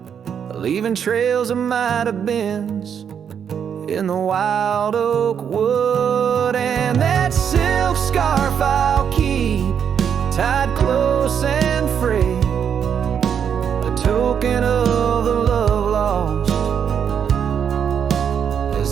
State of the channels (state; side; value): quieter; left; 7.9 dB